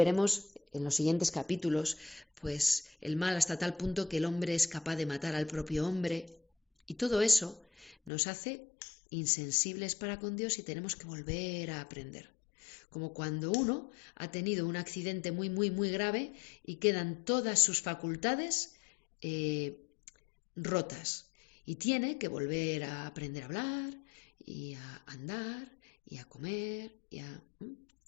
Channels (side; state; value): right; drops out; at 8.1 s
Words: en los siguientes capítulos, pues el mal hasta tal punto que el hombre es capaz de matar al propio hombre, y todo eso nos hace insensibles para con Dios y tenemos que volver a aprender. Como cuando uno ha tenido un accidente muy grave y quedan todas sus facultades rotas y tiene que volver a aprender a hablar y a andar y a comer